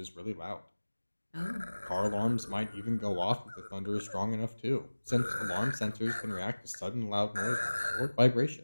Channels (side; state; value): both; inverted; correlation -1.00